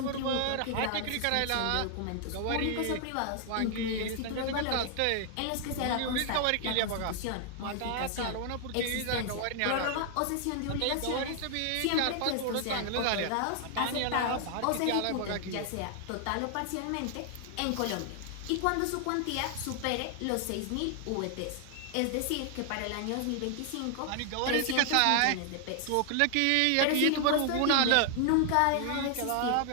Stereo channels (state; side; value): different; both; correlation 0.00